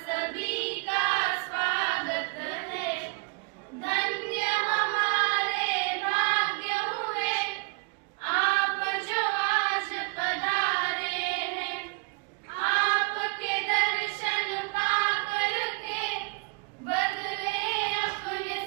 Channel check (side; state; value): left; quieter; 31.3 dB